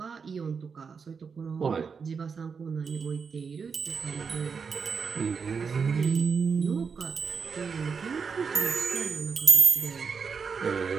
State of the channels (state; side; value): quieter; left; 5.7 dB